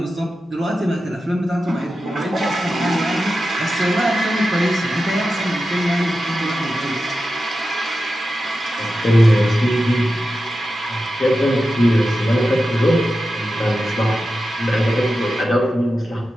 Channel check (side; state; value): both; normal; correlation 0.92